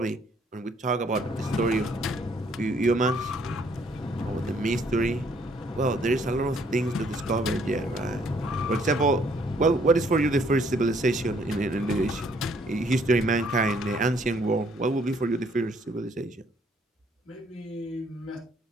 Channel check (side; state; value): both; normal; correlation 0.65